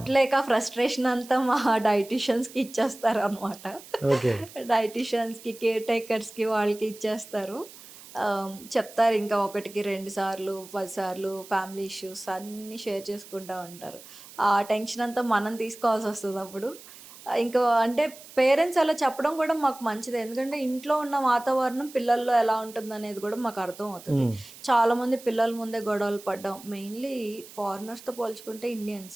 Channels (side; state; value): right; noise; hiss, 18 dB below the sound